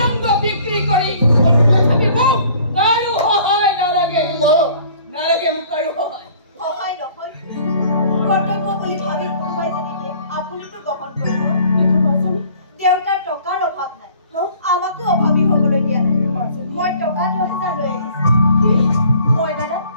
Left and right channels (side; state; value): both; inverted; correlation -0.54